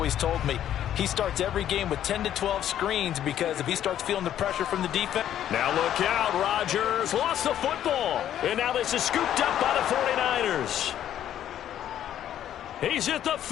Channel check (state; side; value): quieter; right; 11.0 dB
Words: told me he starts every game with 10 to 12 screens because if he starts feeling the pressure from the defense. Now look out, Rodgers lost the football. And now this is scooped up by the 49ers. He's at the